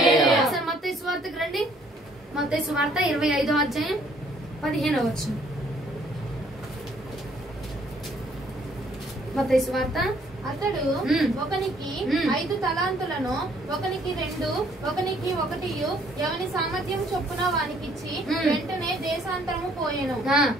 మత్తయి సువార్తకు రండి. మత్తయి సువార్త 25వ అధ్యాయం 15వ వచనం. మత్తయి సువార్త. అతడు ఒకనికి 5 తలాంతులను, ఒకనికి 2, ఒకనికి 1 ఎవని సామర్థ్యం చొప్పున వానికిచ్చి వెంటనే దేశాంతరము పోయెను.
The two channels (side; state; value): both; normal; correlation 0.63